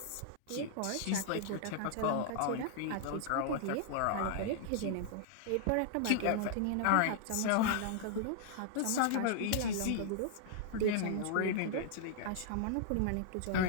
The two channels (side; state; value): both; different; correlation -0.01